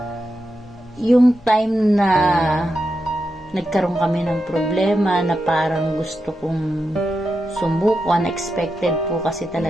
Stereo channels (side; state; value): both; normal; correlation 0.88